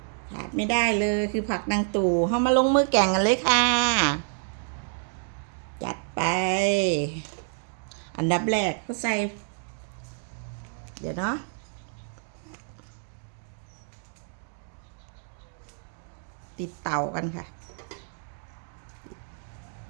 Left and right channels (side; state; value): left; silent; digital silence